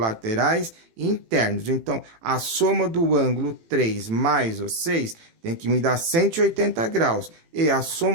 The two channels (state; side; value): late; left; 18 ms